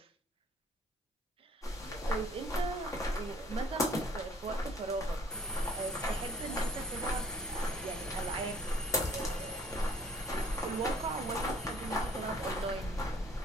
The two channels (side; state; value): both; normal; correlation 0.58